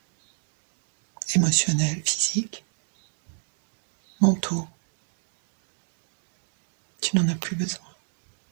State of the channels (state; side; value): silent; left; digital silence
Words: émotionnels, physiques, mentaux. Tu n'en as plus besoin.